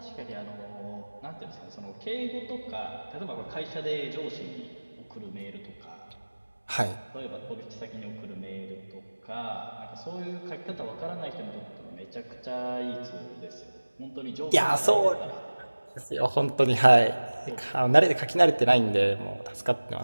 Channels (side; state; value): both; inverted; correlation -1.00